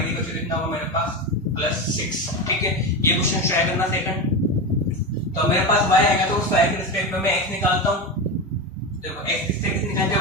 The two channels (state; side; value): normal; both; correlation 0.19